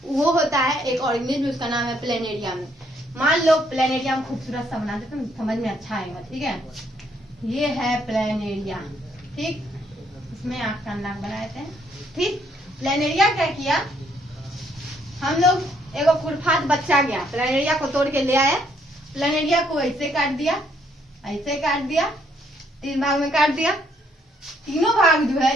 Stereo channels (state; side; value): normal; both; correlation 0.70